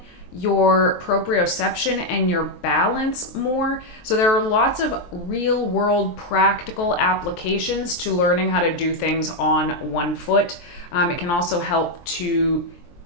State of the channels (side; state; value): right; late; 23 ms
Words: your proprioception and your balance more. So there are lots of real world practical applications to learning how to do things on one foot. It can also help to